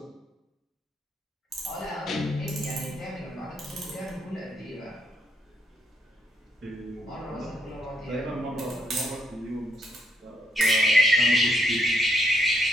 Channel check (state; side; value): normal; both; correlation 0.75